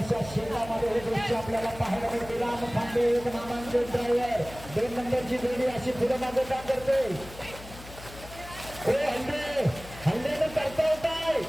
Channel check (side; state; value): left; noise; hum, 16 dB below the sound